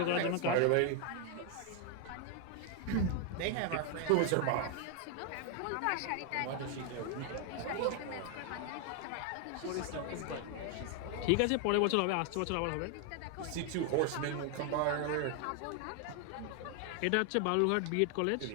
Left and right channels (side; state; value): both; different; correlation 0.00